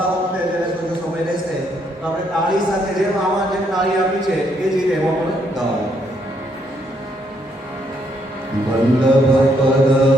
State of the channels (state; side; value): normal; both; correlation 0.73